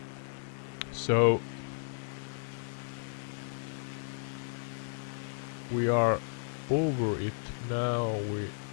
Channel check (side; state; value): right; silent; digital silence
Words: So we are over it now.